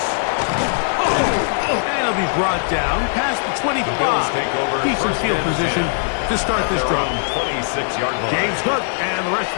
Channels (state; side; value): silent; right; digital silence